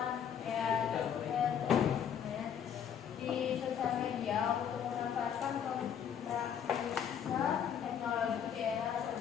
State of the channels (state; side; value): quieter; right; 8.5 dB